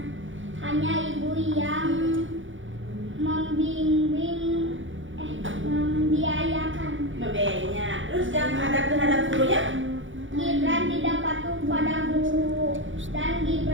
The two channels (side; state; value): left; late; 0.56 ms